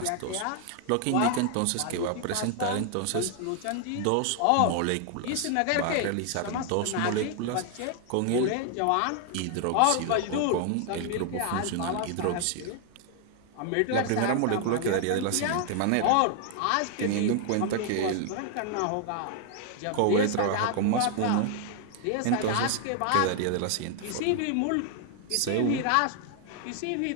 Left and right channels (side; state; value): both; different; correlation 0.00